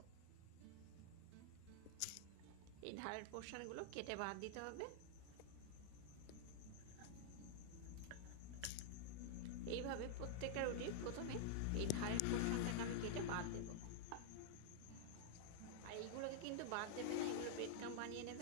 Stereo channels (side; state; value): both; different; correlation -0.01